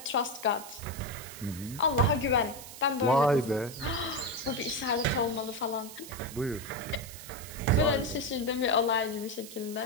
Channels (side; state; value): right; noise; hiss, 14 dB below the sound